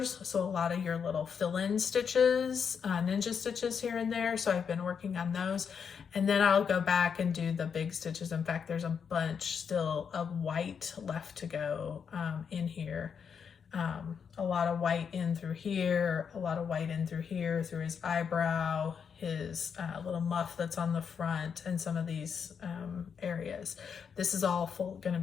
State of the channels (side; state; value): right; quieter; 6.8 dB